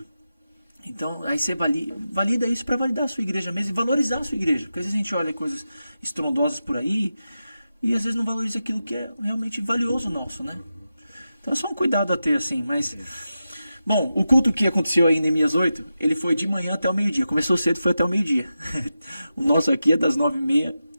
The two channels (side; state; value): both; inverted; correlation -0.91